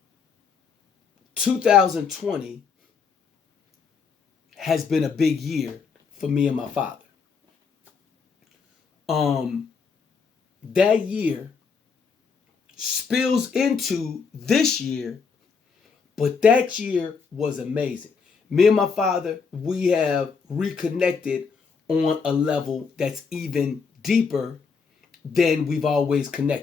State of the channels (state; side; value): quieter; right; 5.5 dB